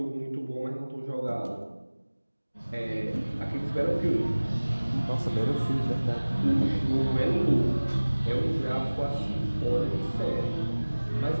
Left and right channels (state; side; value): inverted; both; correlation -1.00